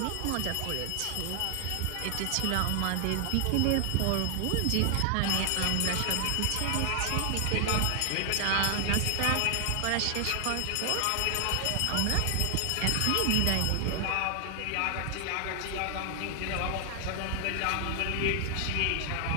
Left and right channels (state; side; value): different; both; correlation 0.00